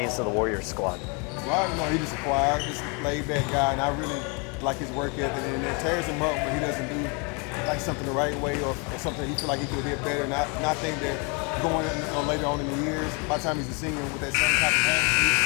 to the Warriors squad. Rock, he's just a quiet, just laid-back guy, and I really like his work ethic. And it tears him up when he doesn't do something the right way or something he feel like he could have did better. And I think that going later on in the years, by the time he's a senior with that same type of talent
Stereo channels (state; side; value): quieter; right; 32.8 dB